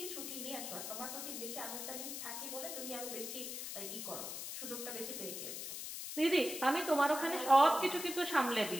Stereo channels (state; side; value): noise; left; hiss, 6 dB below the sound